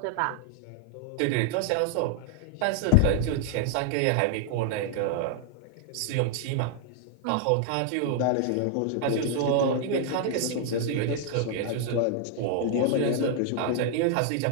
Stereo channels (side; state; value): both; different; correlation 0.00